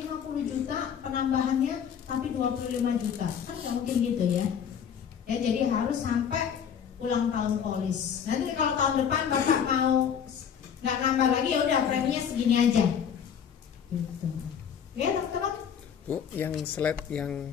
juta penambahannya, tapi 25 juta. Kan nggak mungkin gitu ya. Ya jadi harus sampai ulang tahun polis. Nanti kalau tahun depan Bapak mau nggak nambah lagi ya udah preminya segini aja. Gitu. Ya teman-teman. Bu, yang slide yang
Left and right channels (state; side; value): quieter; right; 8.0 dB